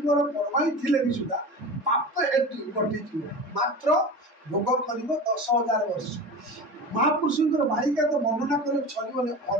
ପରମାଇ ଥିଲେ ବି ସୁଦ୍ଧା ପାପ ହେତୁ ଘଟିଯିବ ମାତ୍ର ଭୋଗ କରିବ 10,000 ବର୍ଷ। ମହାପୁରୁଷଙ୍କର ବାଳିକା ତ ବର୍ଣ୍ଣନା କରି ସରିବନି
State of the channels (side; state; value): both; normal; correlation 0.31